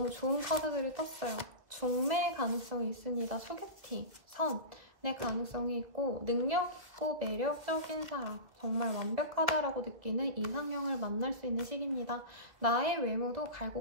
좋은 카드들이 떴어요. 중매 가능성이 있습니다. 소개팅, 선의 가능성이 있고 능력 있고 매력적인 사람, 정말 완벽하다라고 느끼는 이상형을 만날 수 있는 시기입니다. 나의 외모도 갈고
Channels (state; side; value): late; left; 2.2 ms